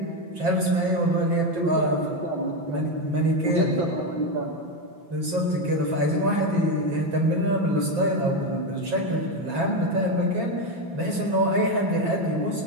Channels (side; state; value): left; late; 6.0 ms